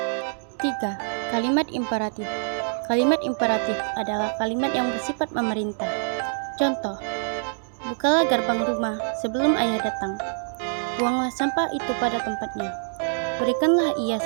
3. Kalimat imperatif. Kalimat imperatif adalah kalimat yang bersifat memerintah. Contoh, bukalah gerbang rumah sebelum ayah datang. Buanglah sampah itu pada tempatnya. Berikanlah ia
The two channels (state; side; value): silent; left; digital silence